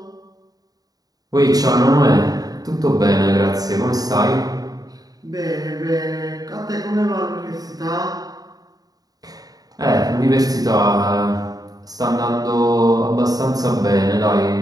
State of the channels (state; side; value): late; left; 0.18 ms